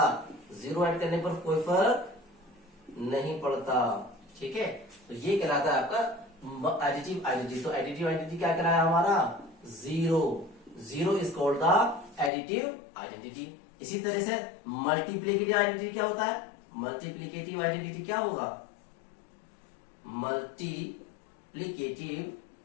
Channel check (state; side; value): drops out; right; at 12.3 s